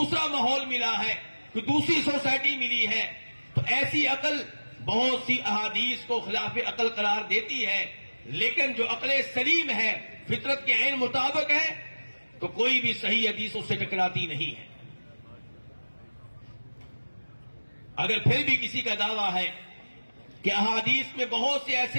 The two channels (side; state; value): both; inverted; correlation -1.00